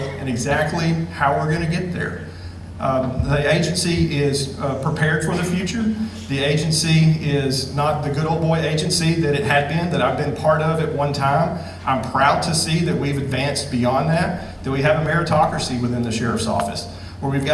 and exactly how we're going to get there. The agency is prepared for the future. The agency is not the good old boy agency that it had been, that I've been part of at one time. I'm proud to see that we've advanced beyond that we have a meritocracy within the Sheriff's Office, where we've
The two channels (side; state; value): both; identical; correlation 1.00